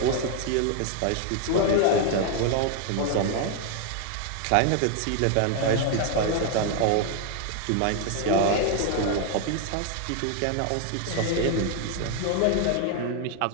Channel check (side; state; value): both; different; correlation 0.00